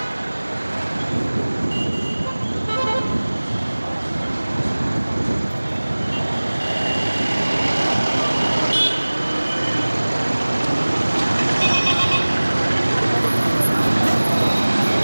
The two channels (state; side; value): inverted; both; correlation -1.00